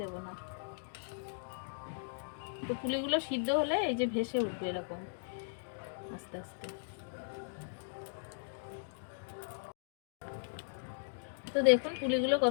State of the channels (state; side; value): silent; right; digital silence